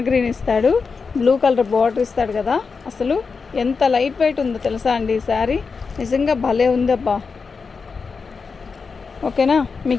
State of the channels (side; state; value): right; quieter; 5.0 dB